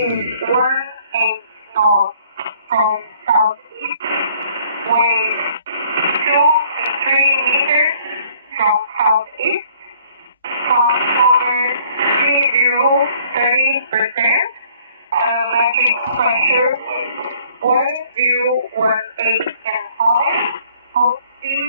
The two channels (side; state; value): both; inverted; correlation -0.59